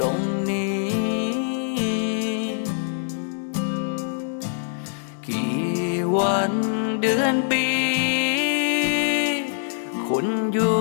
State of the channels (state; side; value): silent; right; digital silence